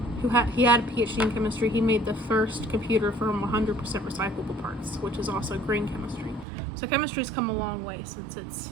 he had a PhD in chemistry. He made the first computer from 100% recyclable parts, which is also green chemistry. So chemistry's come a long way since its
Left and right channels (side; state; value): left; drops out; at 6.5 s